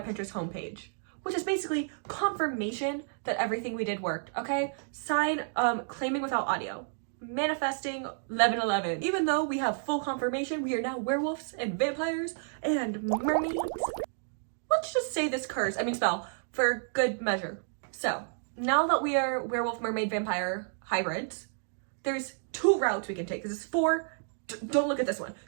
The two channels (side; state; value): left; silent; digital silence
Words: homepage, which is basically confirmation that everything we did worked, okay? Sign, claiming without audio. Manifesting 1111. Even though we have full confirmation, we are now werewolves and vampires and mermaids. Let's just say this spell for good measure. So, now that we are werewolf, mermaid, vampire hybrids, there's 2 routes we can take. This is 4, don't look at this one.